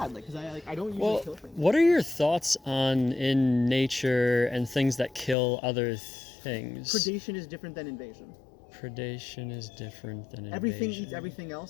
like, because I don't usually kill things. What are your thoughts on in nature and things that kill other things? Predation is different than invasion. Predation is different than invasion. Everything eats everything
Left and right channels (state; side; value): drops out; right; at 5.4 s